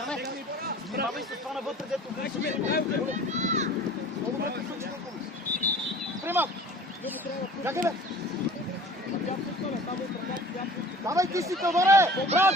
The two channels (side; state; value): both; normal; correlation 0.44